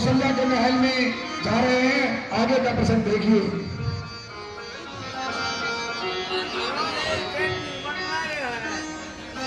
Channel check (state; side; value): identical; both; correlation 1.00